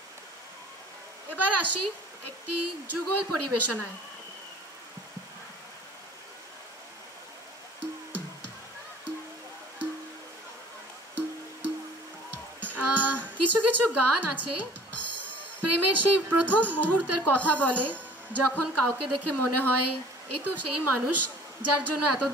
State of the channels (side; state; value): both; normal; correlation 0.50